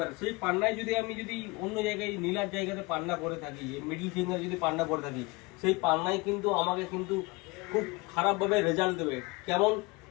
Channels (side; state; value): right; quieter; 24.6 dB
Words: সেই পান্নায় যদি আমি যদি অন্য জায়গায় নীলার জায়গাতে পান্না পরে থাকি, মিডিল ফিঙ্গার যদি পান্না পরে থাকি, সেই পান্নায় কিন্তু আমাকে কিন্তু খুব খারাপভাবে রেজাল্ট দেবে। কেমন?